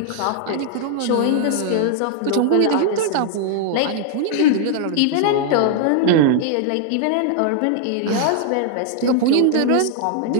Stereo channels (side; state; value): both; different; correlation 0.00